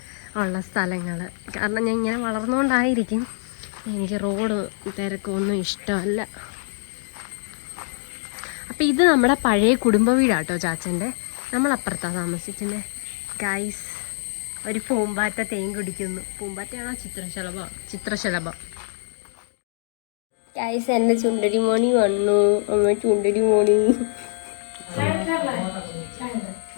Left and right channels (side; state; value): right; silent; digital silence